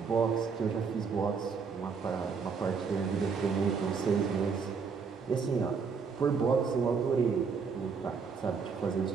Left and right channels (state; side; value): quieter; left; 5.5 dB